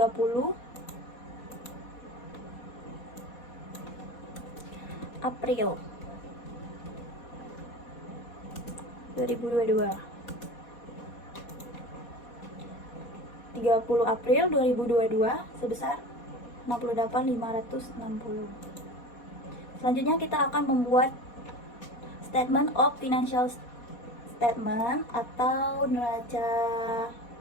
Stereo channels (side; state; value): right; late; 4.2 ms